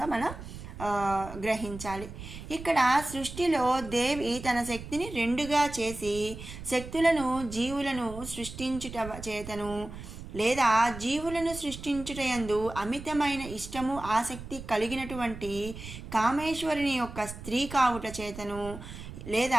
మనం గ్రహించాలి. ఇక్కడ సృష్టిలో దేవి తన శక్తిని రెండుగా చేసి శక్తులను జీవులను సృష్టించుట చేతను లేదా జీవులను సృష్టించుటయందు అమితమైన ఇష్టము ఆసక్తి కలిగినటువంటి కామేశ్వరుని యొక్క స్త్రీ కావుట చేతను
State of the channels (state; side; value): noise; right; rumble, 12 dB below the sound